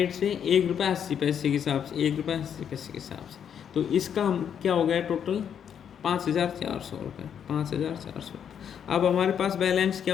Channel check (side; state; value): right; quieter; 8.4 dB